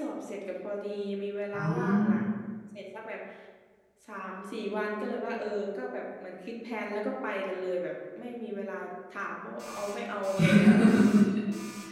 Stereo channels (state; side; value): identical; both; correlation 1.00